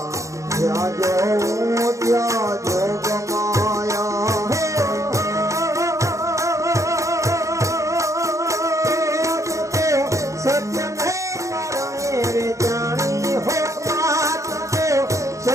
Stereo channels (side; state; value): left; late; 0.15 ms